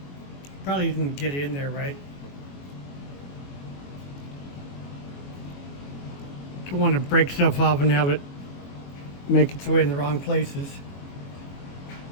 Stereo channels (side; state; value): right; late; 22 ms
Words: probably didn't get it in there right. Don't want to break stuff off and have it make its way in the wrong places.